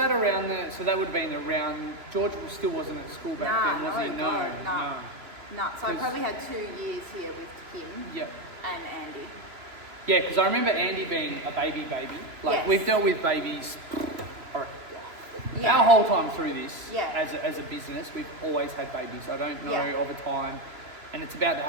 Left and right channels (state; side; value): late; left; 3.0 ms